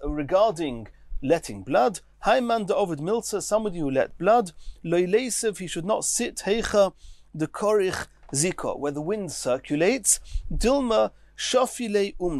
regarding letting blood. Haiman de Ovid Milza, somebody who let blood. Loilesev, he should not sit heicha the korich zika, where the wind circulates. Dilma shafile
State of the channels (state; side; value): identical; both; correlation 1.00